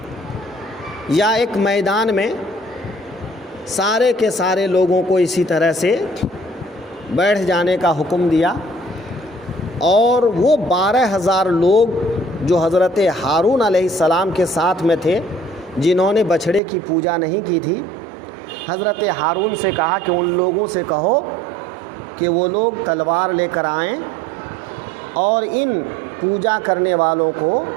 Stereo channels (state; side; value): drops out; left; at 16.6 s